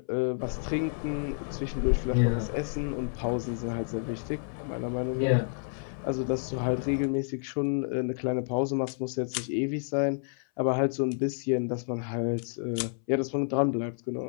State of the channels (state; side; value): silent; right; 58 dB below the other